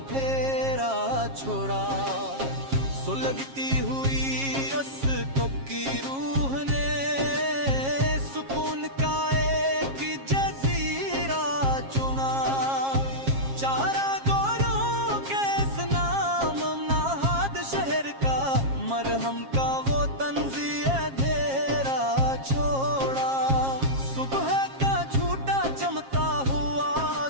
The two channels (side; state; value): left; late; 7.4 ms